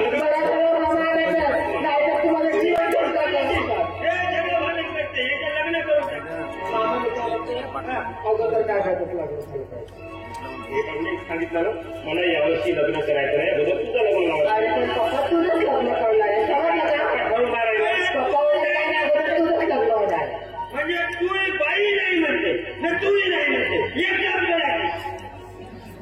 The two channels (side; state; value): both; identical; correlation 1.00